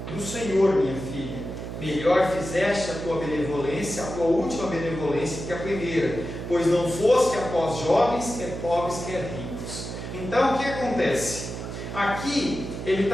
do Senhor, minha filha. Melhor fizeste a tua benevolência, a tua última benevolência, que a primeira, pois não foste após jovens, quer pobres, quer ricos. Então o que acontece? Aqui ele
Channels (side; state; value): right; noise; hum, 7 dB below the sound